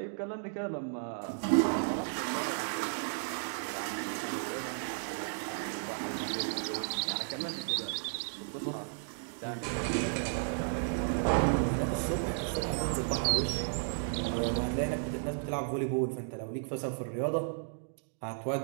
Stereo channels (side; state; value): left; silent; digital silence